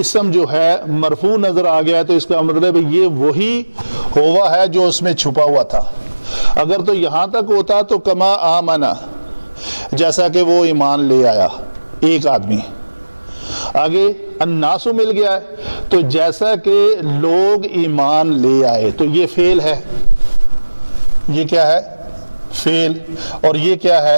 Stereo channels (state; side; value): inverted; both; correlation -1.00